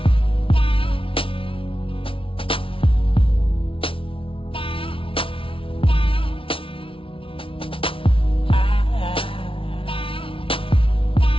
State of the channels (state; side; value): late; right; 0.26 ms